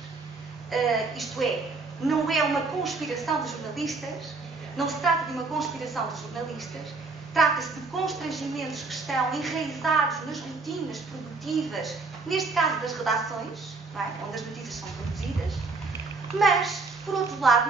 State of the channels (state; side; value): quieter; left; 3.9 dB